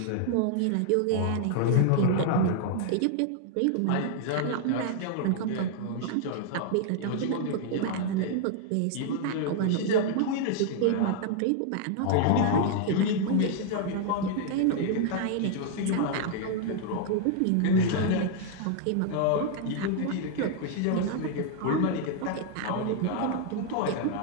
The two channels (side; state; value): both; different; correlation 0.00